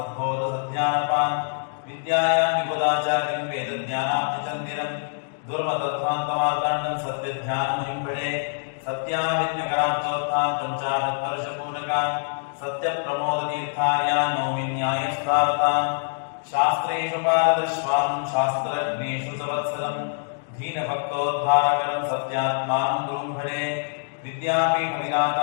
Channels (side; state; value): right; silent; digital silence